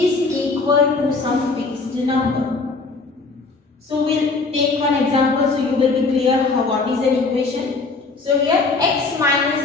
equal to some fixed number. So we'll take one example so you will be clear how what is an equation. So here x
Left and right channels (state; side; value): quieter; right; 3.9 dB